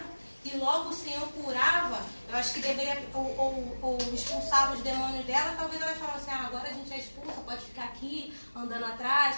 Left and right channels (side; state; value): both; inverted; correlation -1.00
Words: E logo o Senhor curava, eu acho que deveria, ou expulsava os demônios dela, talvez elas falassem, agora a gente já expulsa, pode ficar aqui, andando atrás.